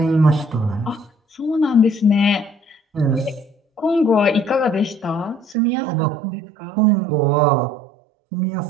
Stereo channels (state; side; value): drops out; left; at 5.6 s